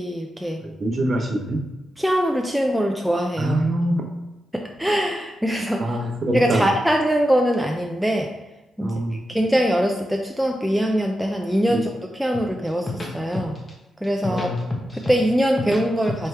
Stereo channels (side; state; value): both; normal; correlation 0.90